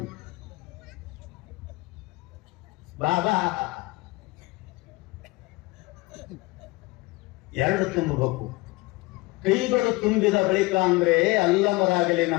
ಬಾಬಾ. ಎರಡು ತುಂಬಬೇಕು. ಕೈಗಳು ತುಂಬಿದ ಬಳಿಕ ಅಂದ್ರೆ ಅಲ್ಲವರಾಗಲಿ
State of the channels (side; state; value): right; quieter; 22.7 dB